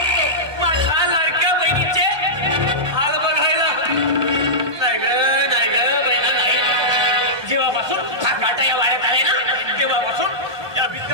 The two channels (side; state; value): left; late; 1.2 ms